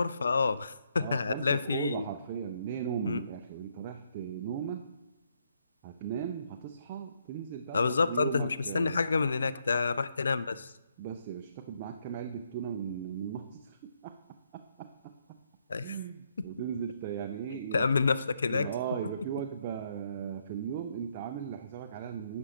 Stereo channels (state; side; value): inverted; both; correlation -0.74